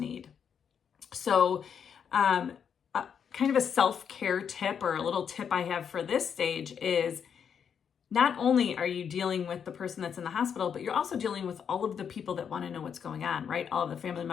So kind of a self-care tip, or a little tip I have for this stage, is not only are you dealing with the person that's in the hospital, but you're also dealing with all of the people that want to know what's going on, right? All of the family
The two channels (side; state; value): right; quieter; 7.5 dB